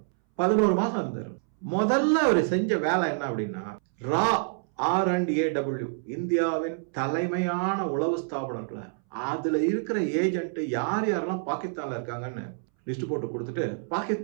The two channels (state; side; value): silent; left; 60 dB below the other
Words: 11 மாசம் இருந்தார். முதல்ல அவர் செஞ்ச வேலை என்ன அப்படின்னா, RAW, இந்தியாவின் தலைமையான உளவு ஸ்தாபனங்களை, அதுல இருக்கிற ஏஜென்ட் யார் யாரெல்லாம் பாகிஸ்தான்ல இருக்காங்கன்னு லிஸ்ட் போட்டு கொடுத்துட்டு,